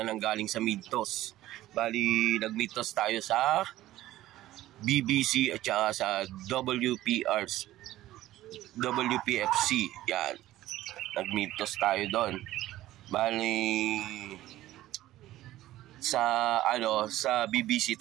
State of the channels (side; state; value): left; quieter; 15.1 dB